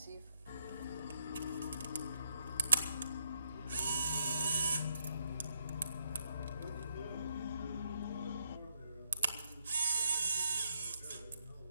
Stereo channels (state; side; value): inverted; both; correlation -0.75